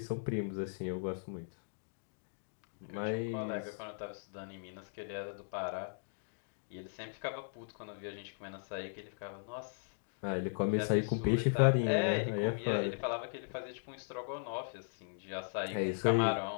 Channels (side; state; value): right; silent; digital silence